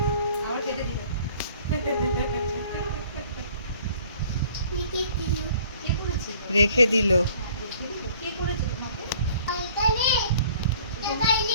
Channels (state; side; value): inverted; both; correlation -0.54